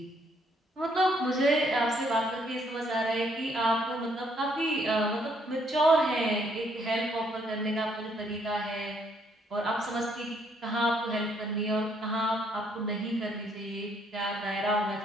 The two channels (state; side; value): normal; both; correlation 0.69